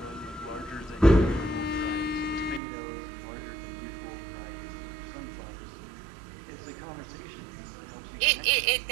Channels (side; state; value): left; drops out; at 2.6 s